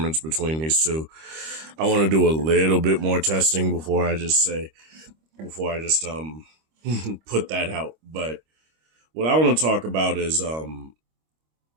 between these two. I want to do a little bit more testing before I just put that out. But what I want to talk about is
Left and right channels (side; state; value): left; late; 25 ms